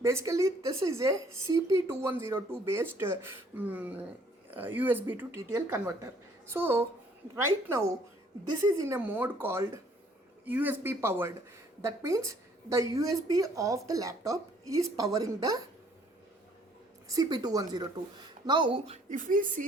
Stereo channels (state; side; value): normal; both; correlation 0.61